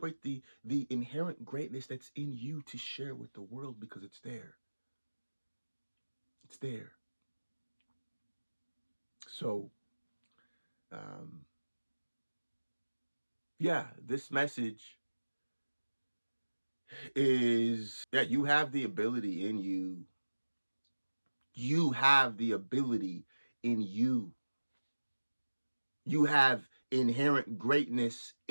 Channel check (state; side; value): inverted; both; correlation -1.00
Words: the inherent greatness that's in you to share with the world, because it's there. It's there. So, this message is, you have the ability in you. You have the ability in you. You have inherent greatness